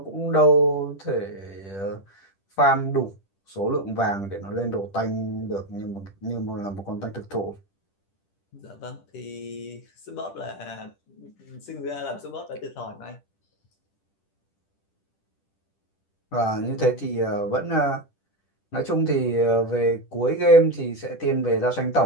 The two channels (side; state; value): right; late; 10 ms